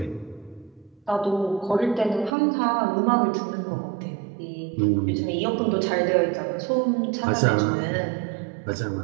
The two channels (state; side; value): drops out; left; at 2.3 s